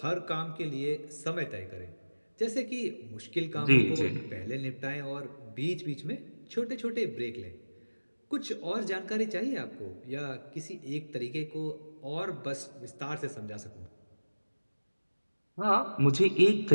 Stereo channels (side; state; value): both; inverted; correlation -1.00